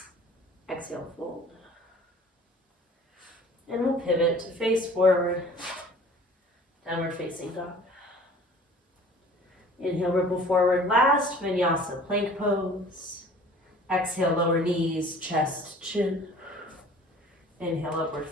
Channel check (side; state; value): both; normal; correlation 0.48